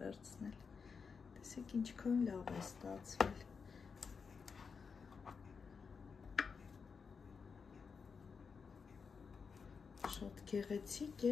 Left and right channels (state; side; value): quieter; right; 5.6 dB